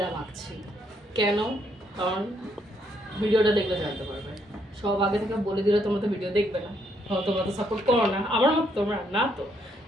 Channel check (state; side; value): normal; both; correlation 0.73